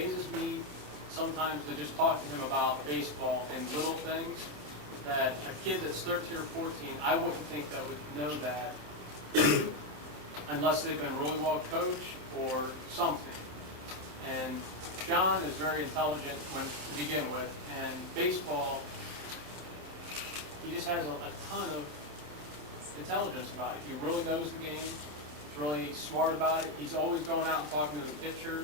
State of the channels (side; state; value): left; late; 27 ms